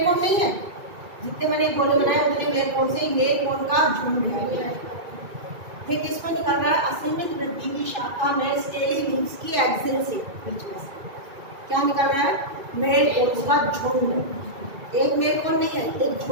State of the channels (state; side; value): late; left; 2.3 ms